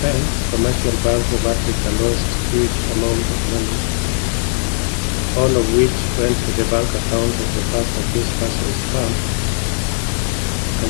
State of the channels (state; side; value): silent; right; 67 dB below the other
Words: Commercial Bank of Africa lost huge amount of money, all of which went to the bank account of the first accused person's firm,